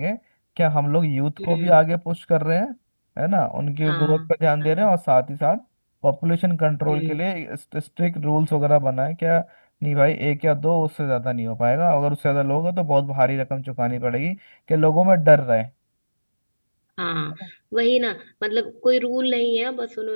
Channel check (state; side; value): inverted; both; correlation -1.00